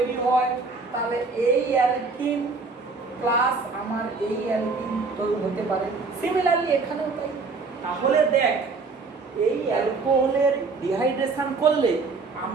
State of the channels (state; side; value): quieter; left; 4.2 dB